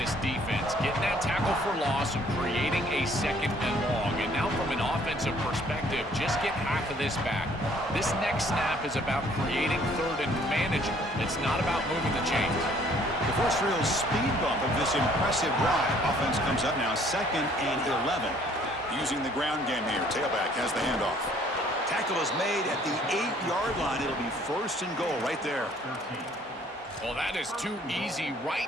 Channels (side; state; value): both; normal; correlation 0.60